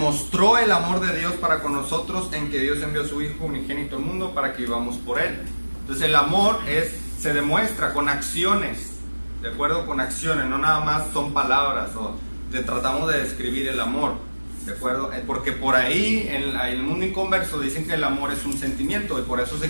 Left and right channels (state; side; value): inverted; both; correlation -1.00